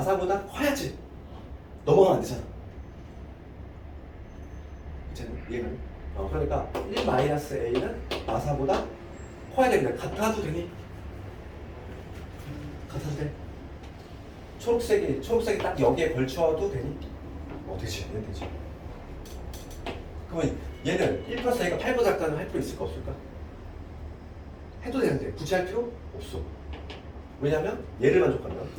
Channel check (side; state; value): both; identical; correlation 1.00